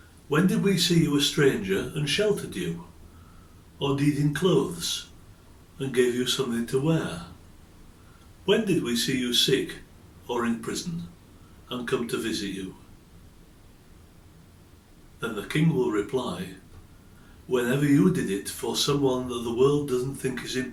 When did we see you a stranger and sheltered you, or needing clothes and gave you something to wear? When did we see you sick or in prison and come to visit you?" Then the king will reply, "Whenever you did it for someone that the world doesn't think is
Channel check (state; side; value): identical; both; correlation 1.00